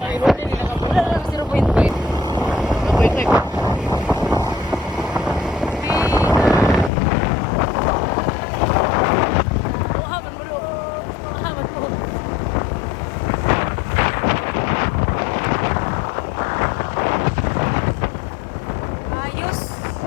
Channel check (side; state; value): right; drops out; at 6.9 s